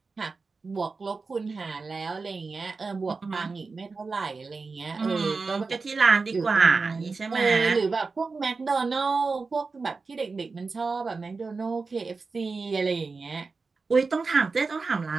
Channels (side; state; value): left; quieter; 4.3 dB